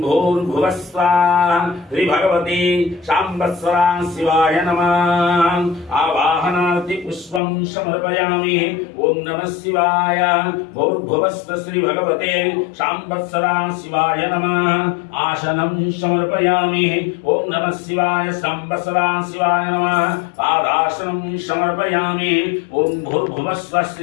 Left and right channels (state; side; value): drops out; right; at 7.4 s